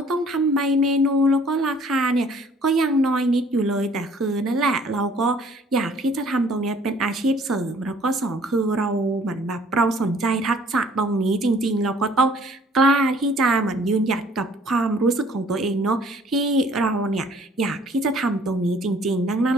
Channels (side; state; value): both; normal; correlation 0.57